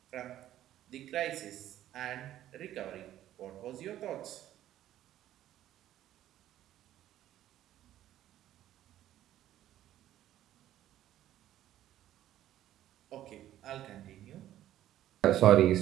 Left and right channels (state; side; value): quieter; left; 12.8 dB